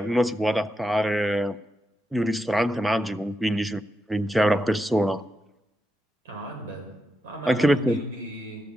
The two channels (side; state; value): both; normal; correlation 0.86